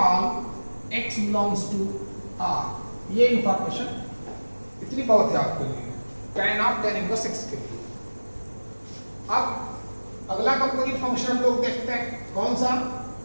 x belongs to R। ये इंफॉर्मेशन इतनी बहुत है आपके लिए tan इनवर्स x के लिए। अब अगला कंपोजिट फंक्शन हम लोग देखते हैं। कौन सा?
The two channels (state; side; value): inverted; both; correlation -1.00